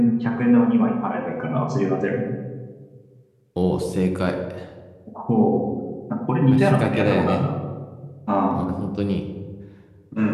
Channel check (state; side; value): identical; both; correlation 1.00